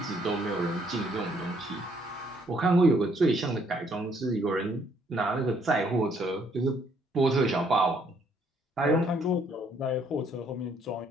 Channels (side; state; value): both; normal; correlation 0.67